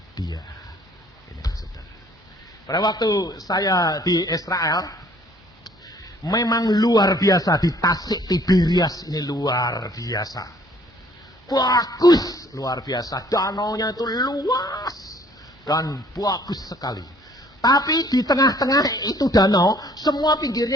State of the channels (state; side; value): normal; both; correlation 0.59